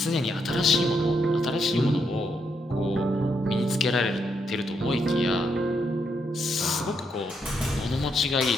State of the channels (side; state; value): both; normal; correlation 0.78